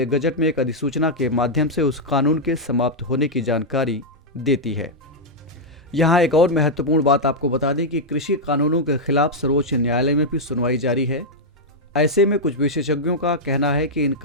गजट में एक अधिसूचना के माध्यम से उस कानून के समाप्त होने की जानकारी देती है। यहाँ एक और महत्वपूर्ण बात आपको बता दें कि कृषि कानूनों के खिलाफ सर्वोच्च न्यायालय में भी सुनवाई जारी है। ऐसे में कुछ विशेषज्ञों का कहना है कि इन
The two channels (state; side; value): normal; both; correlation -0.04